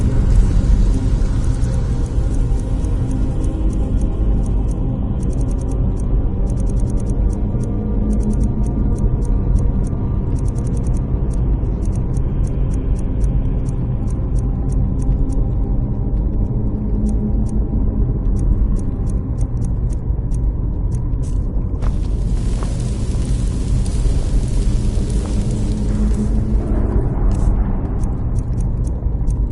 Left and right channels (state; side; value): identical; both; correlation 1.00